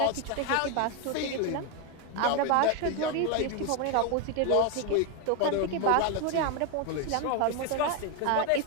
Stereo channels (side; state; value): both; different; correlation 0.02